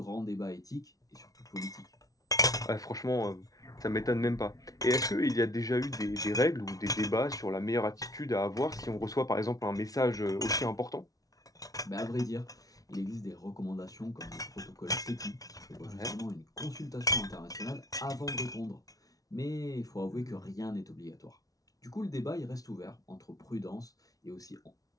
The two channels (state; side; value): late; right; 0.18 ms